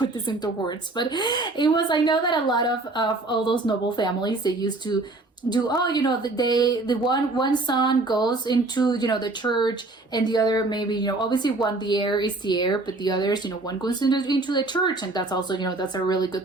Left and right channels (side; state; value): left; quieter; 3.1 dB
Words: this into words, but it was, I know that a lot of all those noble families, they used to do, the one son goes into the church, and the other maybe obviously one, the heir is the heir, but the others, one goes into the church, and that's also that's a really